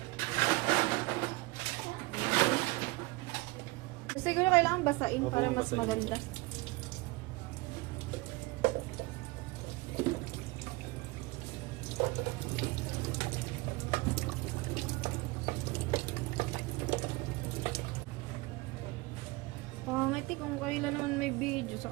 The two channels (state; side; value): quieter; left; 23.0 dB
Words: Siguro kailangan basain para mas maganda. Pangit eh, kung kailan naman may video,